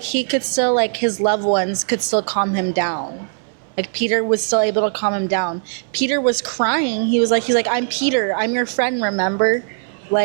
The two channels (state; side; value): silent; left; 66 dB below the other